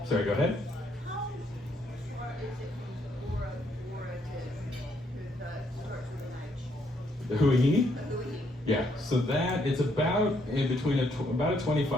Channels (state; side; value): normal; both; correlation 0.72